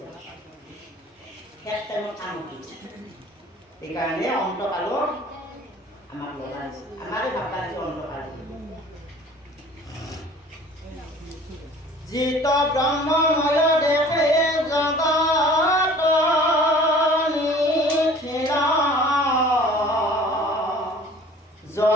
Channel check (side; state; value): both; normal; correlation 0.48